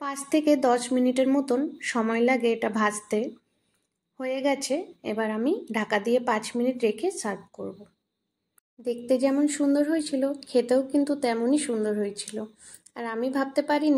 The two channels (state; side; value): identical; both; correlation 1.00